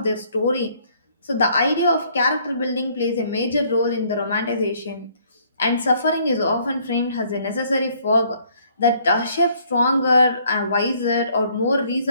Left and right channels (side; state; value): both; inverted; correlation -0.63